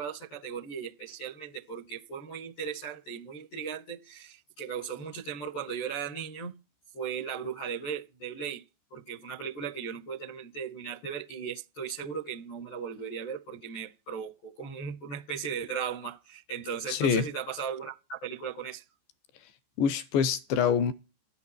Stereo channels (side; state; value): right; late; 14 ms